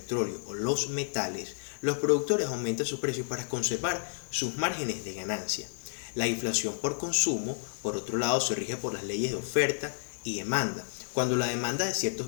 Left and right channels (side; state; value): right; silent; 56 dB below the other